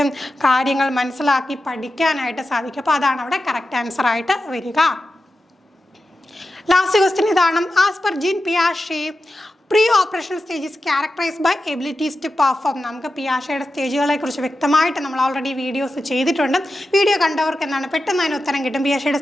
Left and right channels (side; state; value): both; normal; correlation 0.91